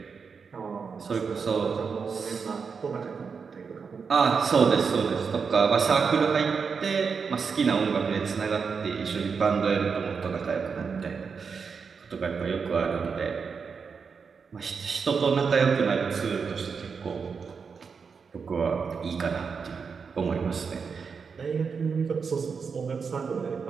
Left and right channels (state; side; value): quieter; left; 5.7 dB